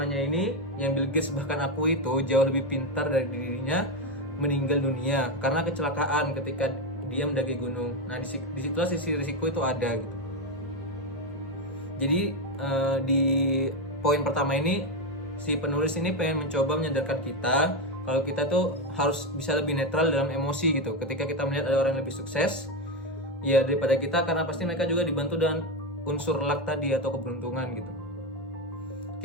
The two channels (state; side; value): normal; both; correlation 0.10